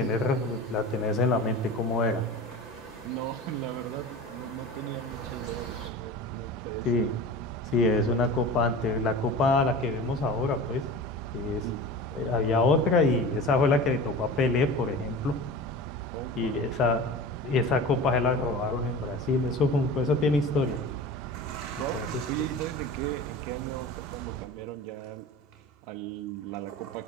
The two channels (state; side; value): normal; both; correlation 0.34